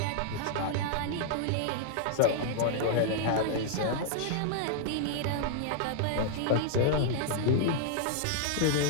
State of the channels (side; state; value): both; different; correlation -0.01